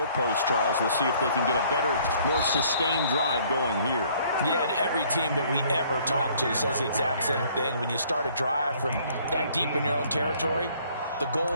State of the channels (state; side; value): inverted; both; correlation -0.60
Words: Charles. We'll see if they can get a better, more sustained drive going here. Yeah, and every team that we ever talk to says the exact same thing. When you start a drive from that deep in your own territory, the